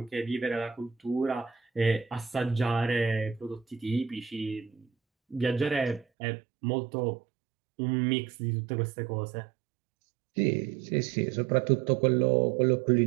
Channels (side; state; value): left; drops out; at 6.1 s